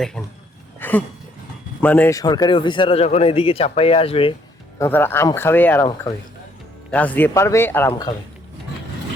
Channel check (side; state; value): both; normal; correlation 0.66